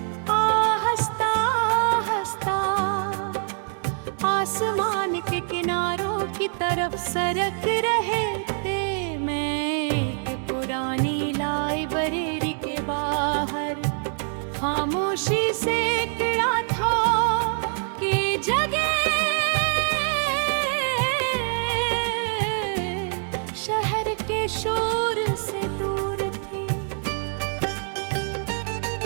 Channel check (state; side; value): silent; left; 61 dB below the other